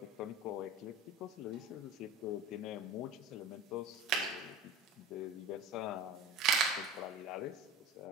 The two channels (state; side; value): normal; both; correlation 0.33